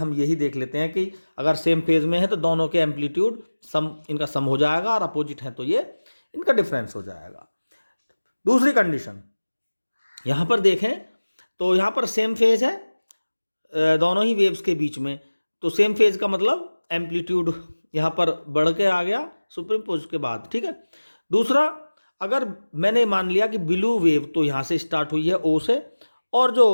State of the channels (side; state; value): both; inverted; correlation -1.00